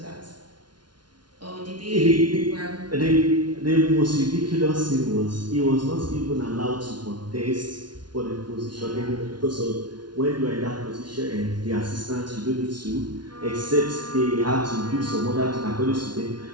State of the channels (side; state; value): left; late; 0.70 ms